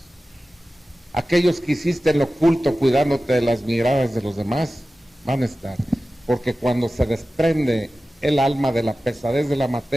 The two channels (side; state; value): both; normal; correlation 0.95